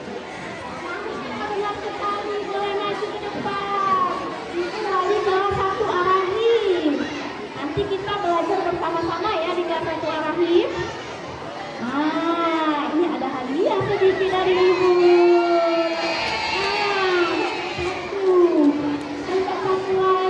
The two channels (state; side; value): identical; both; correlation 1.00